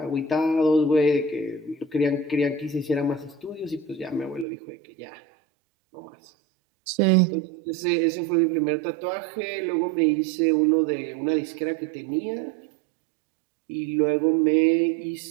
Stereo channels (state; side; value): drops out; left; at 4.5 s